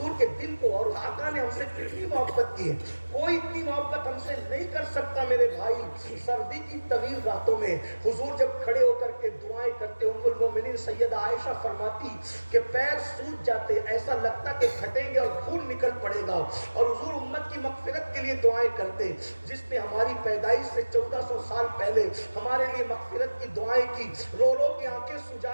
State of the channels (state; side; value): inverted; both; correlation -1.00